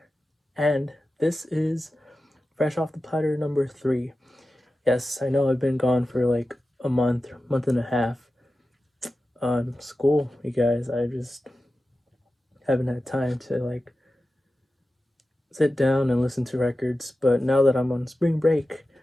and this is Fresh Off the Platter number 3. Yes, I know I've been gone for like a month and a half. School, you guys. I just haven't had time to like sit down and listen to records. But now that I'm on spring break,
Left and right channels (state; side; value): normal; both; correlation 0.93